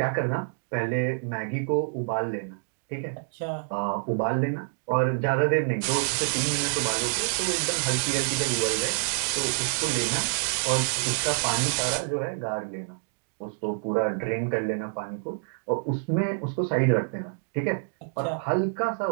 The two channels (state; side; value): silent; left; digital silence